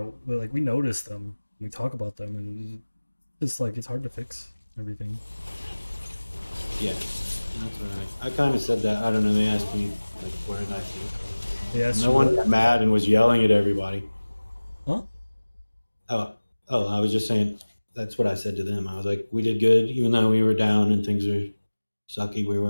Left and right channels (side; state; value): both; inverted; correlation -1.00